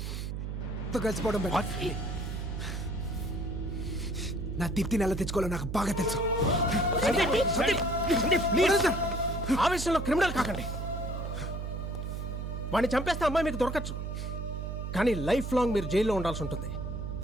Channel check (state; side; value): noise; right; hum, 4 dB below the sound